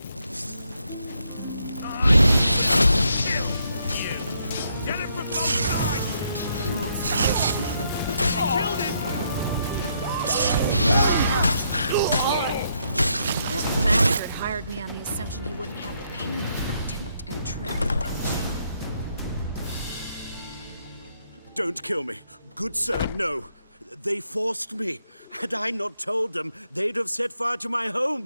Get him from both sides! He killed him! This bastard hired me on the assumption he wouldn't have the pain of duped and trapped. Don't kill me. Good sir, no. They forced me. Had I not told them, they'd have set fire to my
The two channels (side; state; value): both; inverted; correlation -0.75